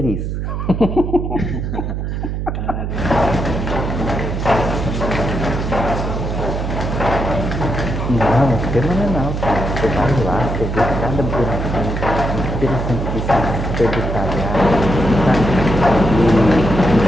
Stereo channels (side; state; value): right; noise; hum, 3 dB below the sound